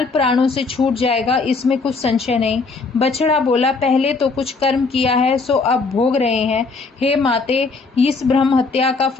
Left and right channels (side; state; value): right; quieter; 4.2 dB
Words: प्राणों से छूट जाएगा, इसमें कुछ संशय नहीं। बछड़ा बोला, पहले तो कुछ कर्म किया है सो अब भोग रहे हैं। हे माते, इस ब्रह्म हत्या का